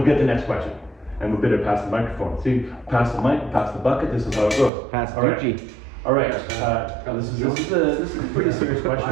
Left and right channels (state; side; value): drops out; left; at 4.7 s